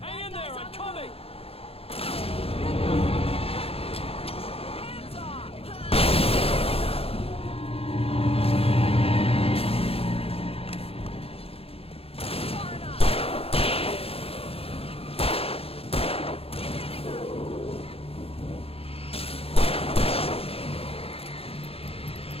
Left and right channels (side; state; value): right; late; 0.28 ms